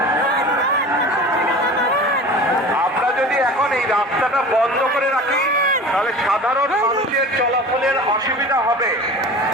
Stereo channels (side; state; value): both; normal; correlation 0.37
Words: আমরা যদি এখন এই রাস্তাটা বন্ধ করে রাখি তাহলে সাধারণ মানুষের চলাচলের অসুবিধা হবে।